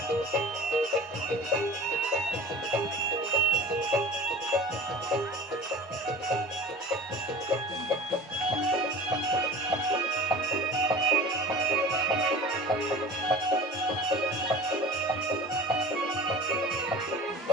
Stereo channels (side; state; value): both; normal; correlation 0.39